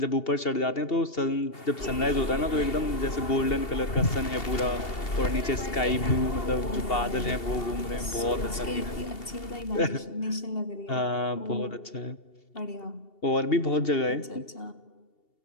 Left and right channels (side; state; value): right; late; 2.7 ms